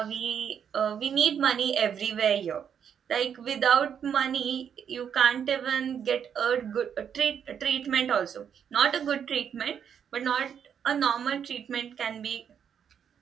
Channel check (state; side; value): quieter; left; 8.0 dB